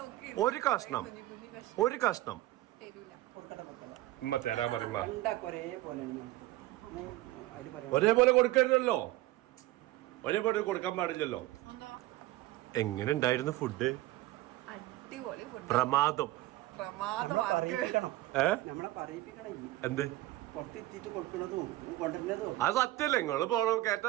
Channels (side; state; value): left; quieter; 17.0 dB